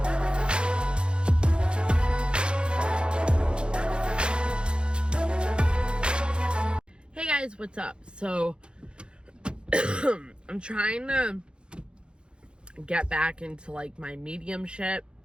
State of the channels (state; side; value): late; left; 0.053 ms